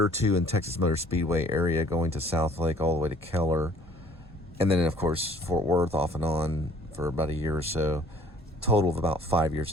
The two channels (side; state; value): both; normal; correlation 0.55